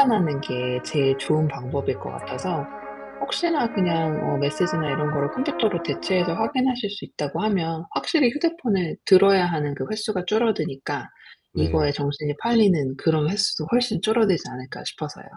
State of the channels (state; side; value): identical; both; correlation 1.00